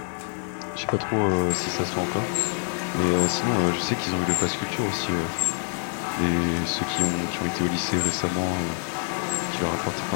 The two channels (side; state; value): right; silent; 61 dB below the other